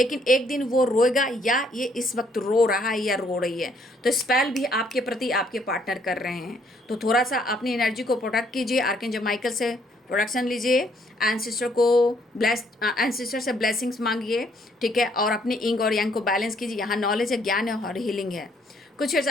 एक दिन वो रोएगा, या ये इस वक्त रो रहा है या रो रही है, तो स्पेल भी आपके प्रति आपके पार्टनर कर रहे हैं। तो थोड़ा सा अपनी एनर्जी को प्रोटेक्ट कीजिए, आर्कएंजल माइकल से प्रोटेक्शन लीजिए, एंसेस्टर से ब्लेसिंग्स मांगिए, ठीक है, और अपने इंग और यांग को बैलेंस कीजिए। यहाँ नॉलेज है, ज्ञान है और हीलिंग है। कुछ अर्स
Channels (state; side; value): normal; both; correlation 0.67